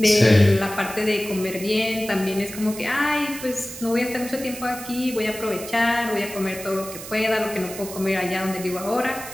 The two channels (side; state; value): right; noise; hiss, 12 dB below the sound